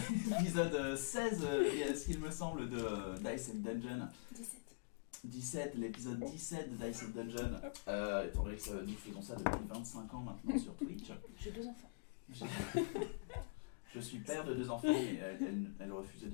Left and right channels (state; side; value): quieter; right; 32.2 dB